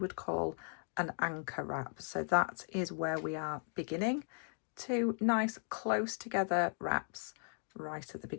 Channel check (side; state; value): right; silent; 53 dB below the other